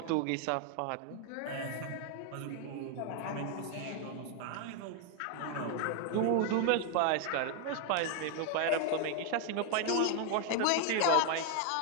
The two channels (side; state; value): both; different; correlation 0.01